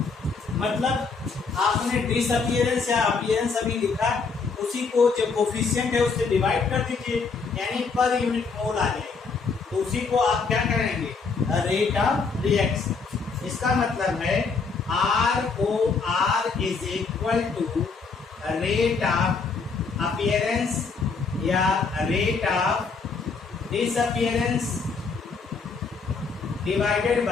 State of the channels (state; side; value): quieter; right; 4.8 dB